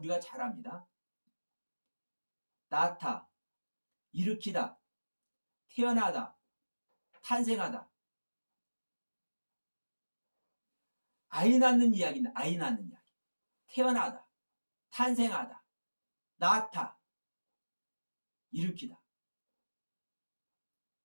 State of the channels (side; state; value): both; inverted; correlation -1.00